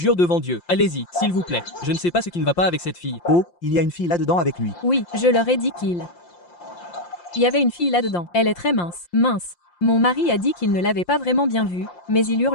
devant Dieu. Allez-y, s'il vous plaît. Je ne sais pas ce qui ne va pas avec cette fille. Oh, il y a une fille là-dedans avec lui. Oui, je leur ai dit qu'il y avait une fille là-dedans. Elle est très mince. Mince. Mon mari a dit qu'il ne l'avait pas vraiment bien vue, mais il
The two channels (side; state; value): right; late; 5.7 ms